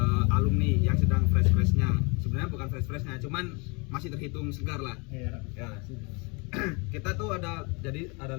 alumni yang sedang fresh-freshnya. Sebenarnya bukan fresh-freshnya, cuman masih terhitung segar lah. Iya. Ya. Kita tuh ada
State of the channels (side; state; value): right; quieter; 30.7 dB